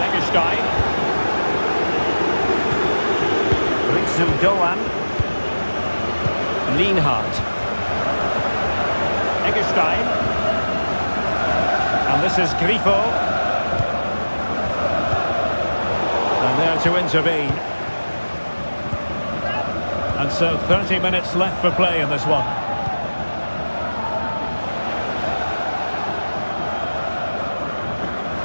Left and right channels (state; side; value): inverted; both; correlation -1.00